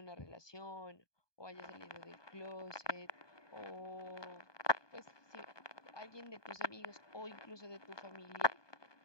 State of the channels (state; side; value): late; right; 1.2 ms